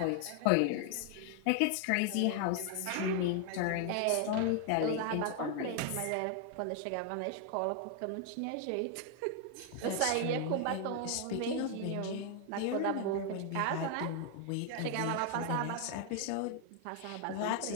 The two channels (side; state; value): both; different; correlation 0.00